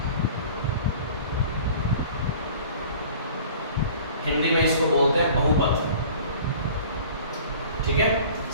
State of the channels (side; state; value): both; inverted; correlation -0.46